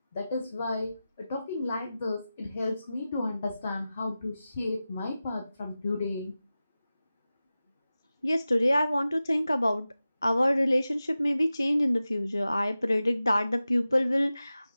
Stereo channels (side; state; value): both; inverted; correlation -0.95